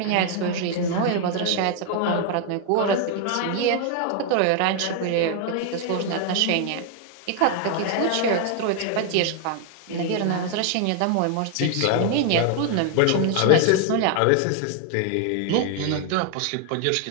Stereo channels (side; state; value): both; different; correlation 0.00